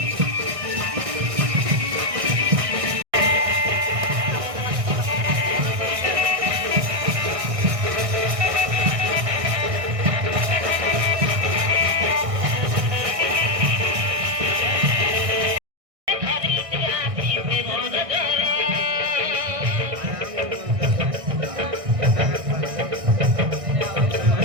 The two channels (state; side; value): late; left; 1.6 ms